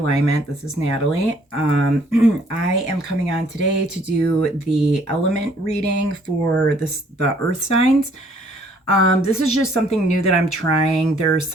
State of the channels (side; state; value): both; normal; correlation 0.62